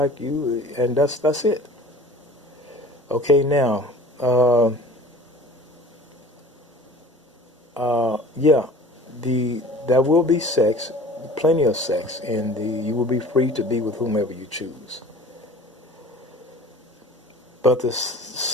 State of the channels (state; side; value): normal; both; correlation 0.43